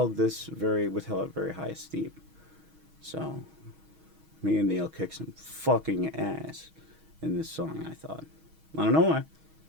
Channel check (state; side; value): late; left; 6.3 ms